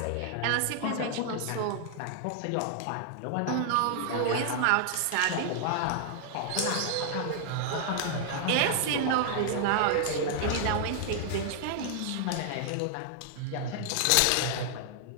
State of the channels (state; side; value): different; both; correlation 0.00